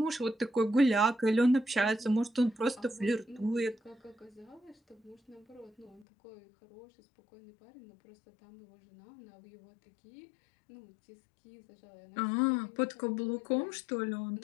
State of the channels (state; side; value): drops out; right; at 6.1 s